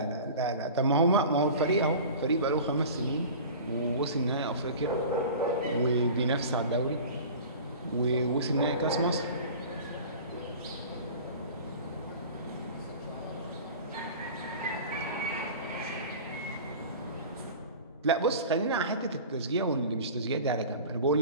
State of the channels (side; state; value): both; inverted; correlation -0.38